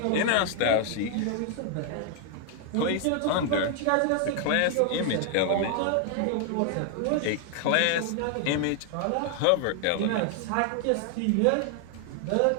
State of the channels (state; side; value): different; both; correlation 0.00